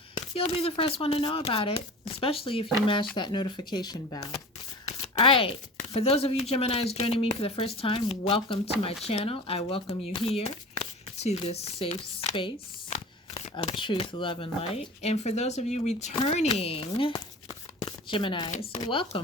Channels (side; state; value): both; normal; correlation 0.37